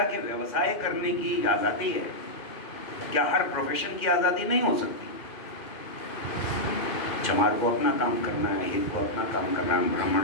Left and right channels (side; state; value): right; late; 2.1 ms